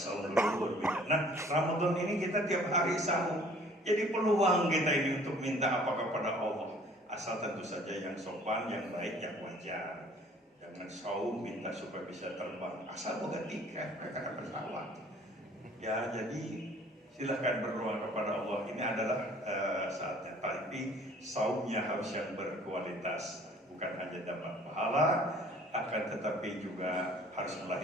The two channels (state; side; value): normal; both; correlation 0.54